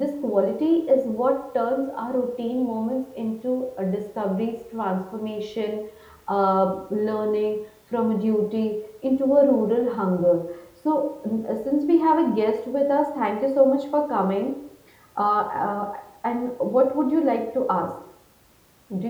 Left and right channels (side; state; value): both; identical; correlation 1.00